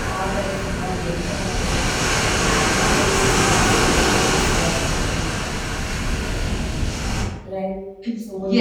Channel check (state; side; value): identical; both; correlation 1.00